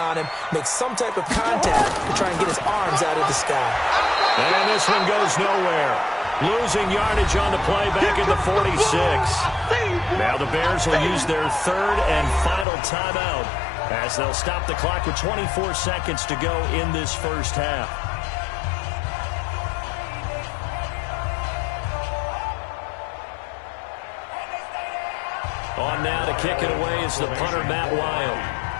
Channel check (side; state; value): right; drops out; at 12.7 s